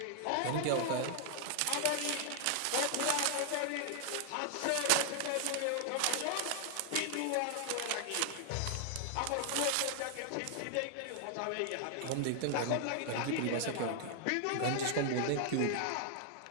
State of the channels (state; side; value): different; both; correlation 0.00